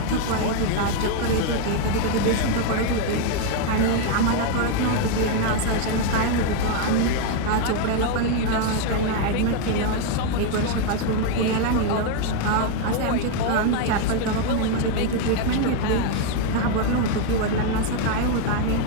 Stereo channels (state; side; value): different; both; correlation 0.01